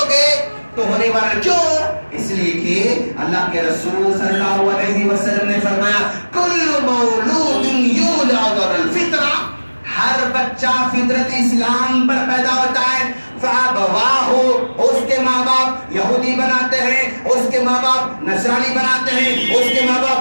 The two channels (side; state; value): both; inverted; correlation -1.00